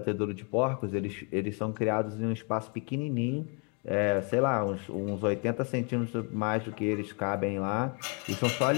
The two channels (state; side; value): quieter; right; 36.9 dB